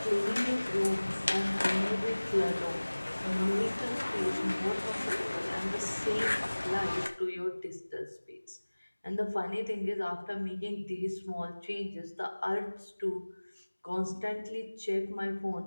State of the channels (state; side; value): inverted; both; correlation -1.00